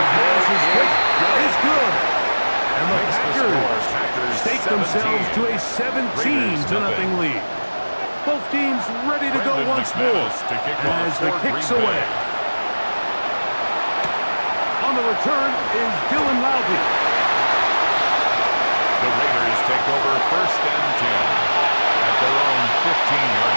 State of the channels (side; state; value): both; inverted; correlation -1.00